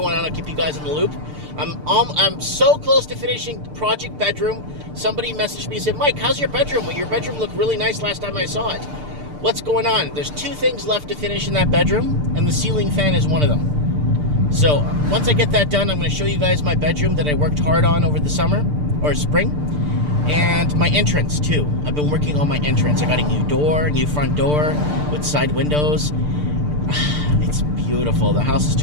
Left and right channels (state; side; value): late; left; 6.7 ms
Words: on. I'll keep you guys in the loop. I'm so close to finishing Project Bedroom. Somebody messaged me and said, Mike, how's your bedroom? Well, your bedroom looked really nice last time I saw it. What's going on? There's 2 things left to finish in that bedroom, and the ceiling fan is one of them. So, once I get that done, I'm going to show you guys my bedroom that I worked hard on over the summer, or spring. And my entrance, too. I've been working on my entrance. I got a new front door with side windows. It's beautiful. The house is